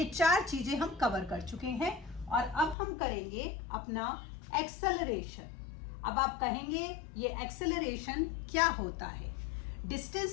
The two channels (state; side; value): drops out; right; at 2.8 s